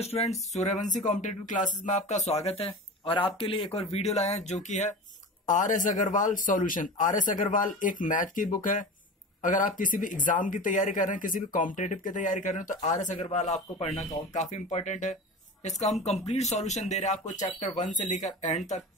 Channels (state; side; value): normal; both; correlation 0.31